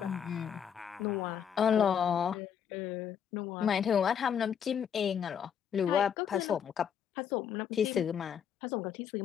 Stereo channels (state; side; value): quieter; right; 8.2 dB